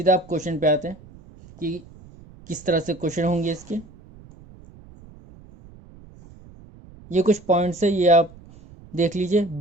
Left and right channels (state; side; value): noise; right; rumble, 22 dB below the sound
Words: आप क्वेश्चन पे आते हैं कि किस तरह से क्वेश्चन होंगे इसके। ये कुछ पॉइंट्स है, ये आप देख लीजिए।